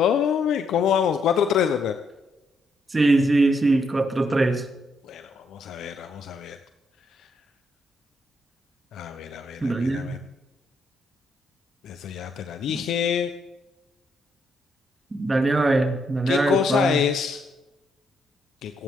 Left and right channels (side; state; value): both; normal; correlation 0.76